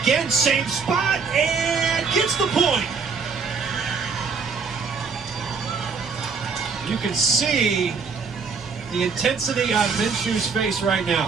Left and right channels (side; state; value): left; quieter; 5.3 dB